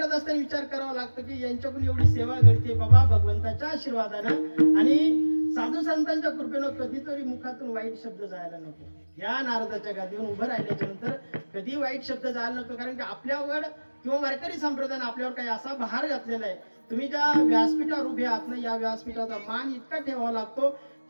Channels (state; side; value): inverted; both; correlation -1.00